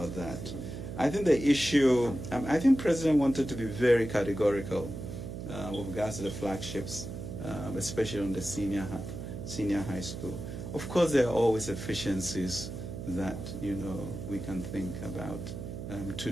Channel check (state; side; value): noise; right; hum, 8 dB below the sound